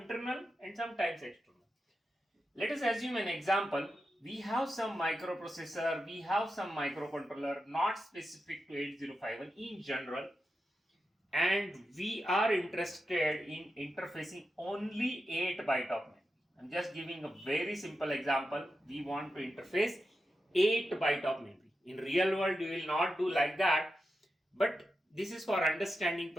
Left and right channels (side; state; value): both; normal; correlation 0.89